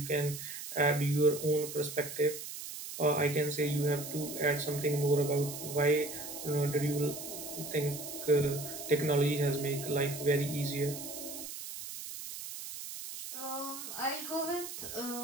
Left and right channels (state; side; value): noise; right; hiss, 9 dB below the sound